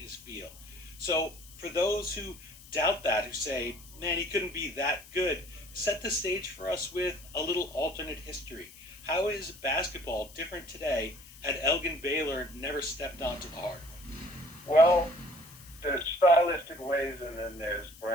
field. So for those who doubt that, who say, man, he couldn't be that good, set the stage for us with a little alternate history. How is basketball different today had Elgin Baylor never stepped onto the hardwood? Well, there's stylistic ways and then there's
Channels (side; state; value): left; noise; hiss, 20 dB below the sound